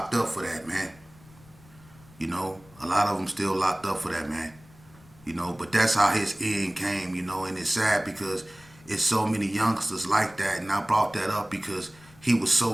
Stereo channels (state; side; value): noise; left; rumble, 25 dB below the sound